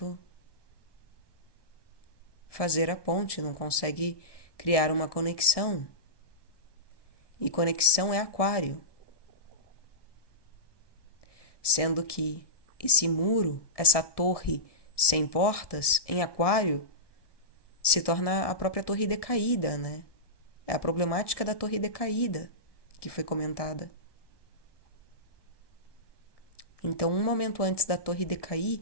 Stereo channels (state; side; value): late; right; 1.2 ms